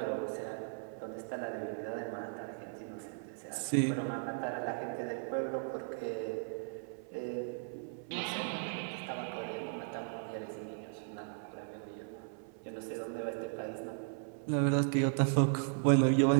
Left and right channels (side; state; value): left; silent; 54 dB below the other